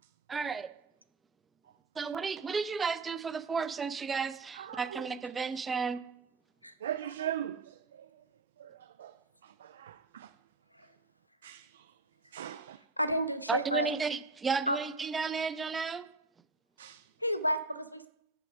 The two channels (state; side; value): quieter; left; 3.5 dB